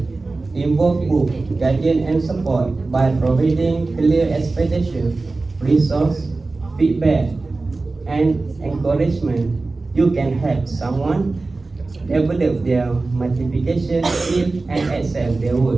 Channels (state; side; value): quieter; left; 3.5 dB